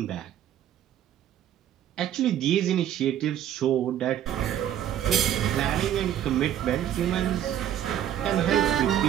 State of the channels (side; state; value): left; quieter; 10.9 dB